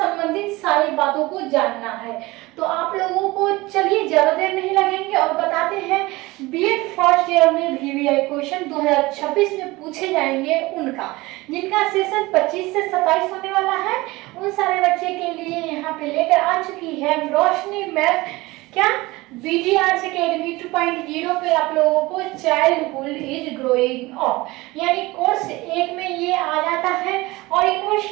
सारी बातों को जानना है। तो आप लोगों को चलिए ज्यादा देर नहीं लगेंगे और बताते हैं बीएड फर्स्ट ईयर में वीवीआई क्वेश्चन 2026 में पूछे जाएंगे उनका, जिनका सेशन 25 से 27 होने वाला है। उन सारे बच्चे के लिए यहाँ पे लेकर आ चुकी है रोशनी मैम क्या बीडी आर्ट्स अकेडमी 2.0 पे आप लोगों को चाइल्डहुड इज ग्रोइंग अप, यानी कोर्स 1 में ये आ जाता है। और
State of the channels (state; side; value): quieter; left; 21.1 dB